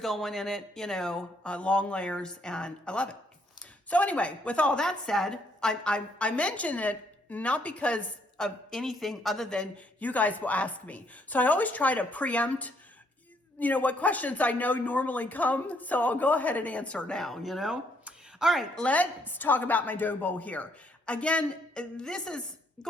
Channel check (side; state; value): both; normal; correlation 0.70